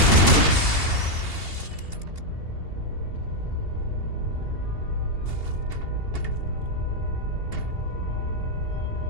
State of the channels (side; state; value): left; late; 2.8 ms